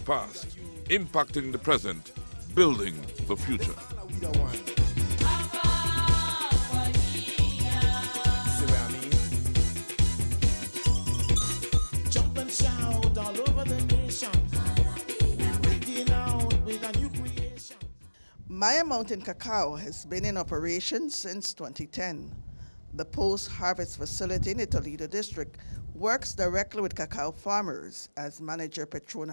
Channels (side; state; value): both; inverted; correlation -1.00